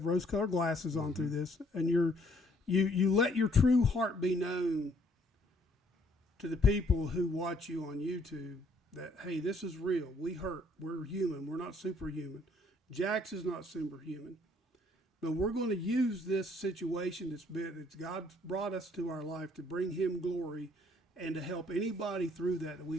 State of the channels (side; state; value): both; normal; correlation 0.64